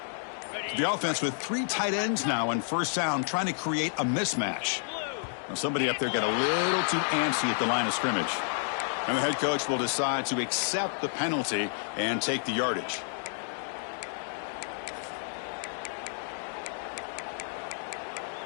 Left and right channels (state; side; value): silent; right; digital silence